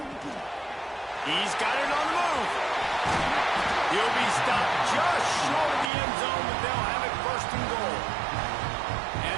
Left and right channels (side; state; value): left; drops out; at 5.9 s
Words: He's got it on the move. He'll be stopped just short of the end zone, but they'll have it 1st and goal.